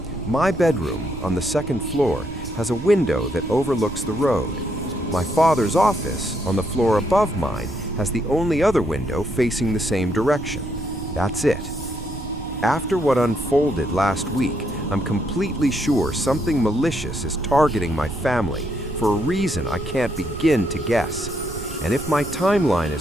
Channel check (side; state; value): right; noise; rumble, 11 dB below the sound